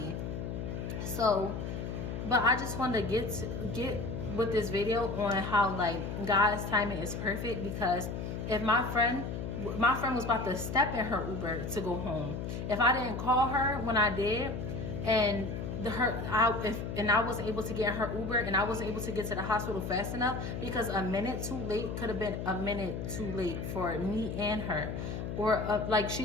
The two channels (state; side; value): noise; left; hum, 5 dB below the sound